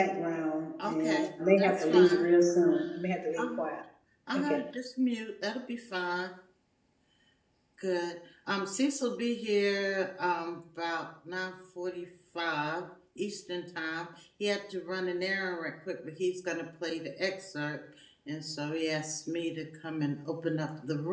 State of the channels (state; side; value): identical; both; correlation 1.00